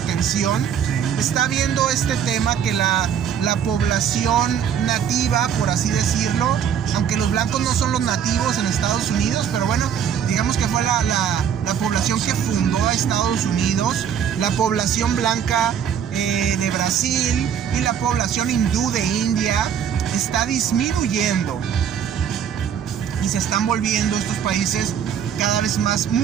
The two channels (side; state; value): left; quieter; 8.4 dB